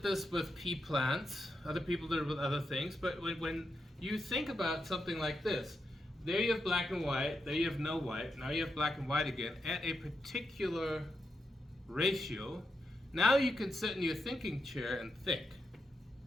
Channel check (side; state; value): both; normal; correlation 0.85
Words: this with pea plants, other people did it with other things, but when you think about something like this, there you have black and white, there you have no white, now you have black and white again, at a particular ratio, now you can sit in your thinking chair and think.